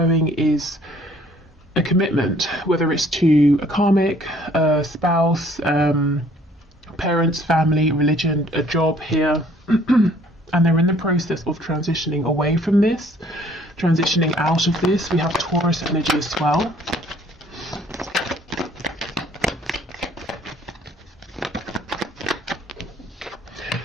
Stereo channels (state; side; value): normal; both; correlation 0.59